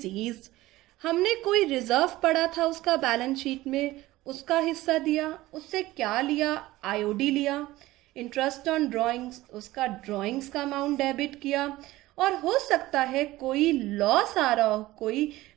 हमने कोई रिजर्व पड़ा था उसका बैलेंस शीट में, उसका हिस्सा दिया। उससे क्या लिया, आईओडी लिया। इंटरेस्ट ऑन ड्राइंग्स, उसका ड्राइंग्स का अमाउंट डेबिट किया। और हो सकता है कोई लॉस आ रहा हो, कोई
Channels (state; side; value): quieter; left; 17.5 dB